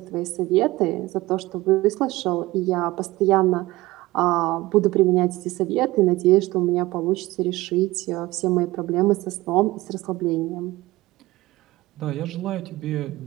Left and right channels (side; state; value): left; quieter; 19.1 dB